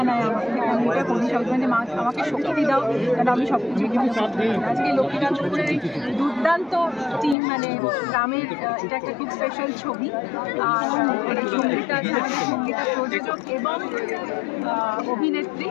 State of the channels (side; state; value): right; drops out; at 7.4 s